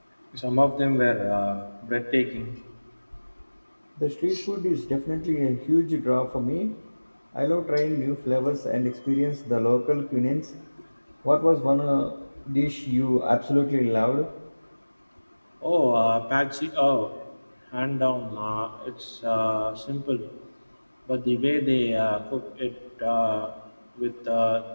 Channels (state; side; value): inverted; both; correlation -1.00